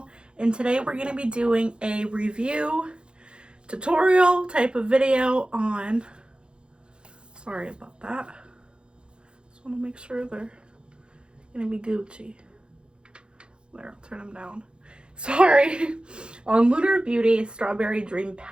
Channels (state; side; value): late; left; 0.052 ms